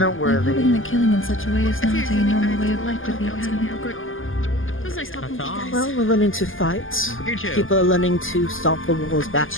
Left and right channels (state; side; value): late; right; 0.59 ms